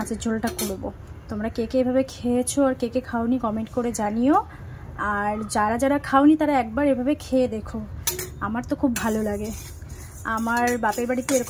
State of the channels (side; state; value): both; identical; correlation 1.00